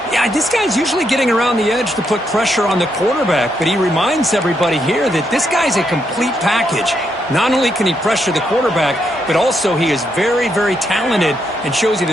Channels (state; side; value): normal; both; correlation 0.78